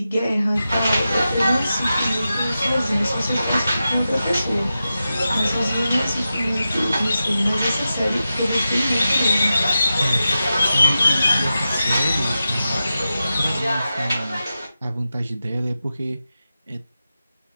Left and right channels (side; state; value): both; inverted; correlation -0.92